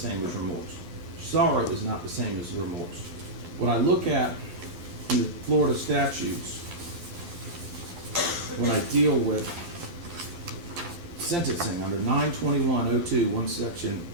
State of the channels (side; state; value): left; late; 12 ms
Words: as remorse. Sorrow is not the same as remorse. What I look at in the Florida statutes when I deal with sentencing under 921.02,